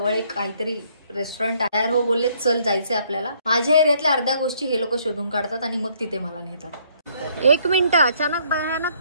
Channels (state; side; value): inverted; both; correlation -0.66